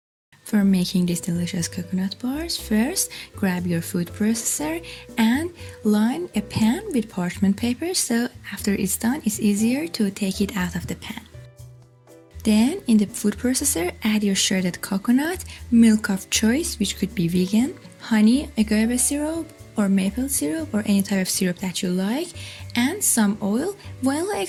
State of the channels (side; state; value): both; identical; correlation 1.00